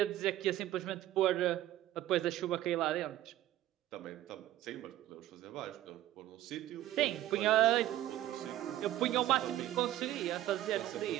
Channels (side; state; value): left; quieter; 13.9 dB